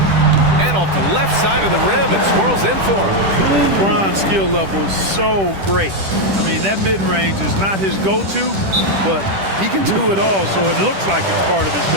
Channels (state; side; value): late; left; 10 ms